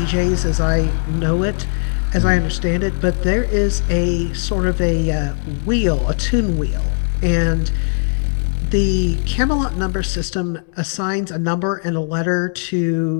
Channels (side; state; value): right; silent; digital silence